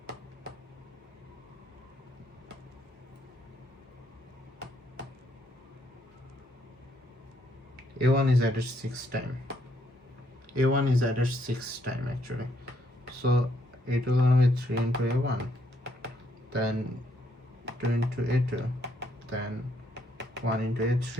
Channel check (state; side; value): normal; both; correlation 0.72